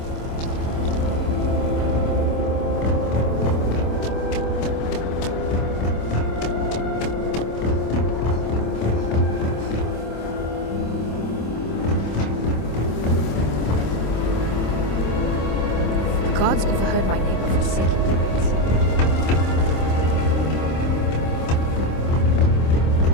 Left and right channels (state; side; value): late; right; 26 ms